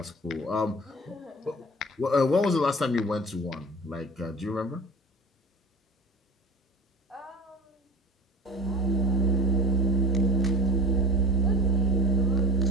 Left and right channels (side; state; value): both; normal; correlation 0.38